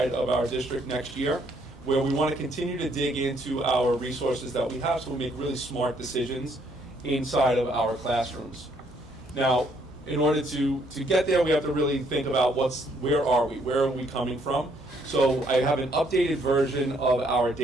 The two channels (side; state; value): both; normal; correlation 0.68